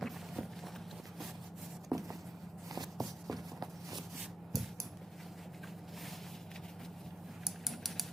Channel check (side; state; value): both; normal; correlation 0.84